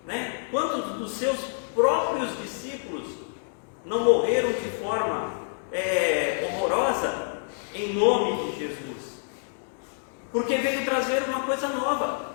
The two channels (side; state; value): right; silent; digital silence